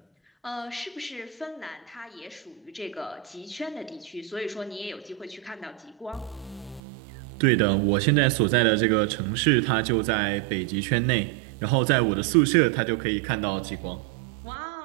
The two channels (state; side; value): drops out; left; at 6.8 s